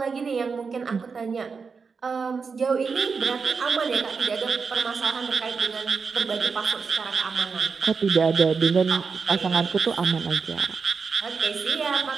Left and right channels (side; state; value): left; quieter; 5.2 dB